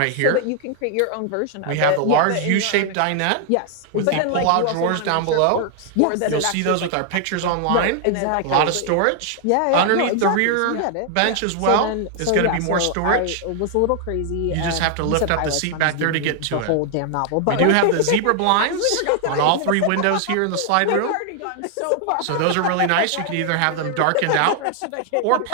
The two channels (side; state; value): both; different; correlation 0.00